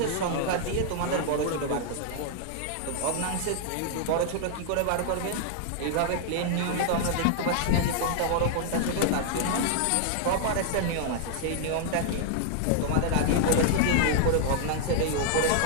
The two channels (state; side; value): different; both; correlation 0.00